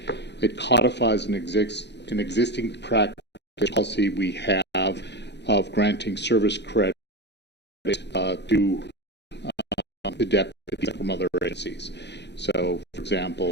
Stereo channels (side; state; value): right; late; 0.50 ms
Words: codifies an existing practice policy we have of granting service credit to the deputies from other agencies. So, for